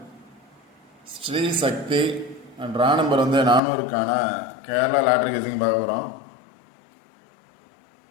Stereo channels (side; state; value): right; drops out; at 3.6 s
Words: Sri Sakthi draw number 400க்கான Kerala lottery guessing பார்க்க போகிறோம்.